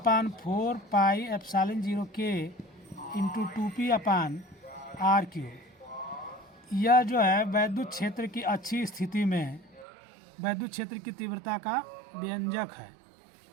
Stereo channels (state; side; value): drops out; left; at 9.9 s